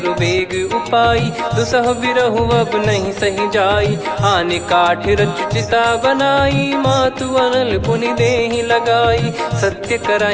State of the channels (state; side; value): identical; both; correlation 1.00